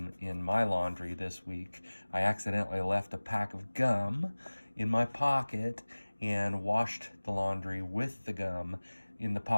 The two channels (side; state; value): both; inverted; correlation -1.00